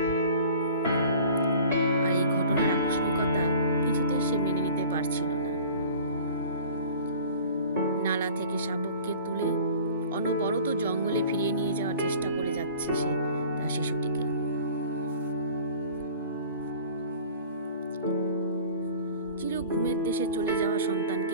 আর এই ঘটনার আকস্মিকতা কিছুতেই সে মেনে নিতে পারছিল না। নালা থেকে শাবককে তুলে অনবরত জঙ্গলে ফিরিয়ে নিয়ে যাওয়ার চেষ্টা করে যাচ্ছে সে তার শিশুটিকে। চির ঘুমের দেশে চলে যাওয়া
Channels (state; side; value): inverted; both; correlation -0.44